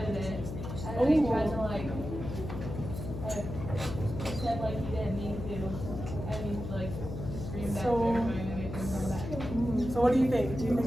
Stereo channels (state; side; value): noise; left; hum, 7 dB below the sound